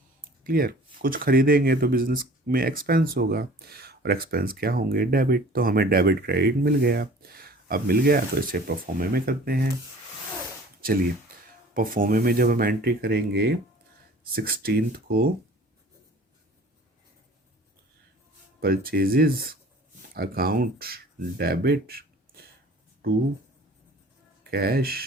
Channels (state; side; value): normal; both; correlation 0.47